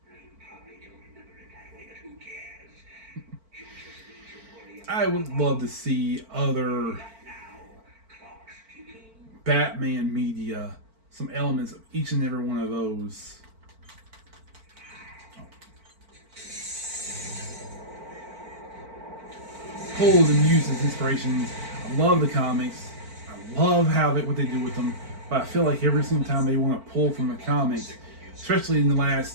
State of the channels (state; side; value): late; left; 4.5 ms